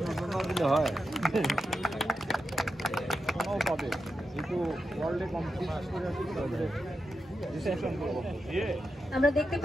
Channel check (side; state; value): both; normal; correlation 0.88